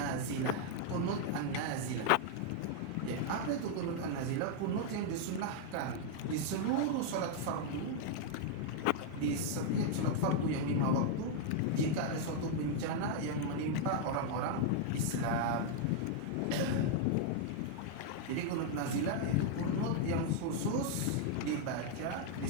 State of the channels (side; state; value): both; different; correlation 0.00